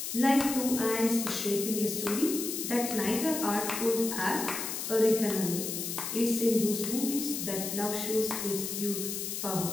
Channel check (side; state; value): left; noise; hiss, 4 dB below the sound